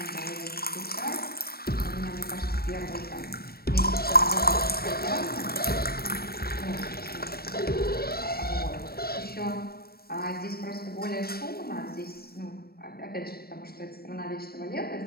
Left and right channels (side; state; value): right; late; 0.44 ms